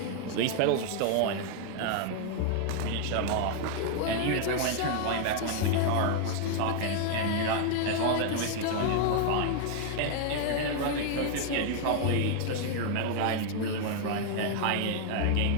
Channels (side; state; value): both; different; correlation 0.00